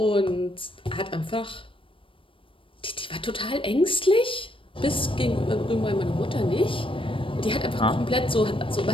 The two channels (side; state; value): right; late; 0.25 ms